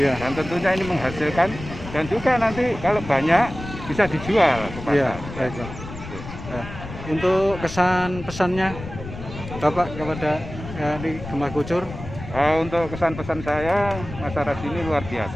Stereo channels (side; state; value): left; noise; rumble, 11 dB below the sound